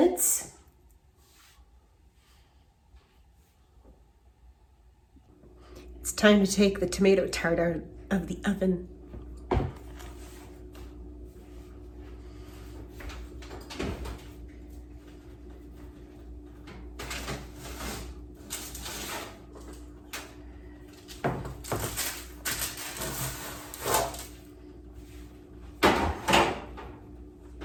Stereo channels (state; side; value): identical; both; correlation 1.00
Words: It's time to take the tomato tart out of the oven.